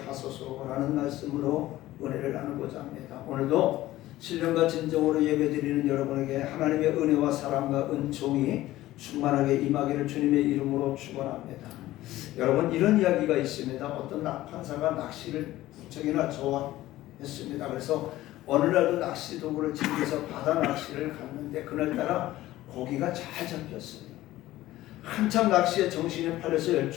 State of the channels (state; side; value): quieter; right; 15.9 dB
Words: 하소서라는 말씀으로 은혜를 나누고자 합니다. 오늘도 신령과 진정으로 예배드리는 여러분에게 하나님의 은혜와 사랑과 은총이 충만하게 임하기를 주님의 이름으로 축원합니다. 여러분, 이런 이야기가 있습니다. 어떤 판사가 낚시를 부쩍이나 좋아했습니다. 그래서 어느 날도 낚시 도구를 챙겨서 바다 낚시를 갔는데 그날따라 고기가 잘 잡혔어요. 한참 낚시에 정신이 팔려서